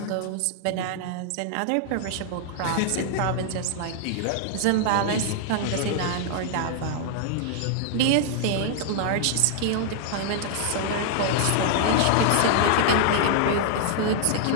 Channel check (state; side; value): different; both; correlation -0.01